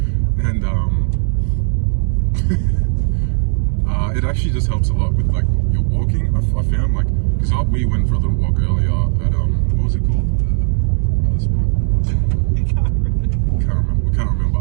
And it actually just helps a lot with like your walking. I found like, because we went for a little walk earlier at what was it called? Other spot. Can't remember.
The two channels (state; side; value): silent; left; 68 dB below the other